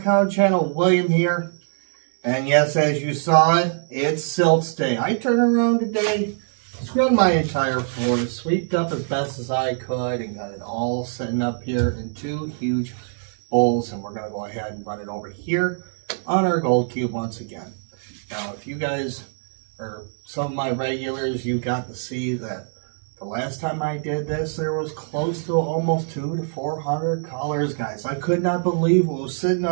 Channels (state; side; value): silent; left; digital silence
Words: channel. William here. And yes, as you saw it, it's silts day. I turned around today, scrubbed my entire floor, swept up as best as I could, and got it all sitting up here in two huge bowls. And we're going to go ahead and run it over here on our gold cube once again. Now, if you guys are some of my regulars, you got to see that the last time I did this, there was close to almost 200 to 400 colors, guys. I could not believe what was sitting